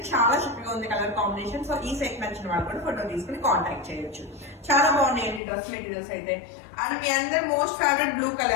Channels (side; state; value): right; drops out; at 5.4 s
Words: చాలా చక్కగా ఉంది కలర్ కాంబినేషన్. సో ఈ సెట్ నచ్చిన వాళ్ళు కూడా ఫోటో తీసుకుని కాంటాక్ట్ చేయొచ్చు. చాలా బాగున్నాయండి డ్రెస్ మెటీరియల్స్ అయితే. అండ్ మీ అందరు most favourite blue